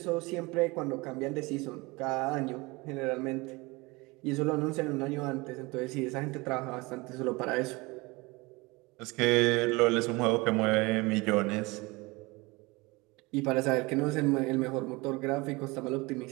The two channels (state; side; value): quieter; left; 24.3 dB